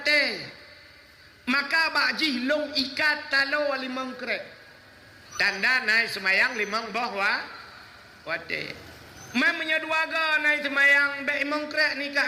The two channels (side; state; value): both; identical; correlation 1.00